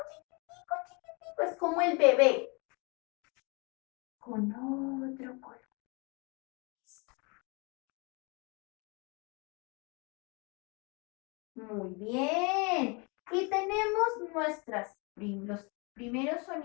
chiquitico, chiquitico. Es como el bebé. Con otro color. Muy bien. Y tenemos los primeros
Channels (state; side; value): quieter; right; 30.6 dB